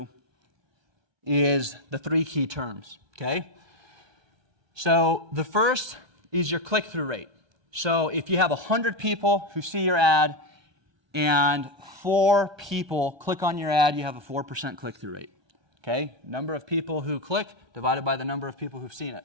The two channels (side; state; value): left; late; 1.2 ms